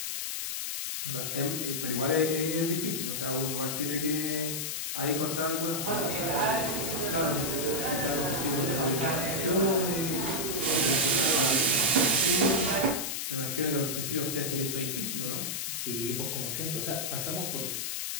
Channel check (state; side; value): noise; left; hiss, 2 dB below the sound